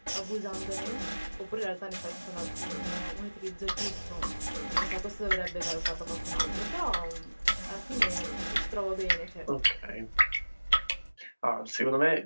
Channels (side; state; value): both; inverted; correlation -1.00